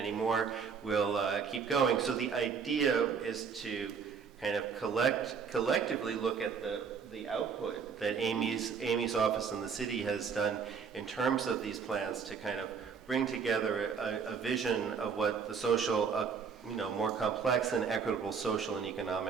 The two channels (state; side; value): quieter; left; 6.2 dB